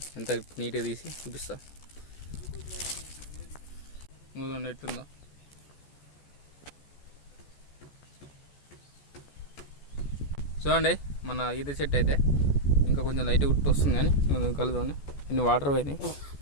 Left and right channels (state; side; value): late; right; 14 ms